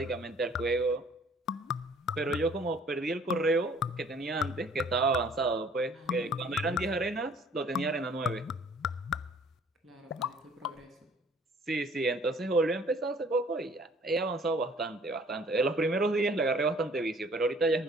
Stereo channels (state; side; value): normal; both; correlation 0.56